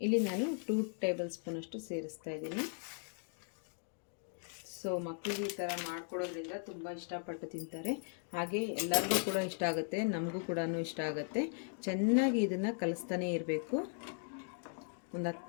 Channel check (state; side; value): silent; right; 53 dB below the other